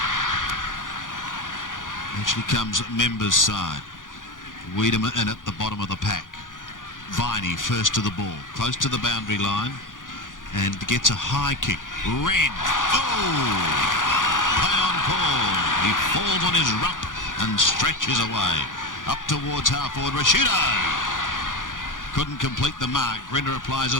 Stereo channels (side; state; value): right; late; 0.88 ms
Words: Actually comes Members' side. Wiedemann in at the bottom of the pack. Viney first to the ball, close to the boundary line, and gets a high kick. Wren. Oh! Play on Paul. He falls on his rump and stretches away. Up towards half-forward. Rashudo couldn't complete the mark. Grinder applies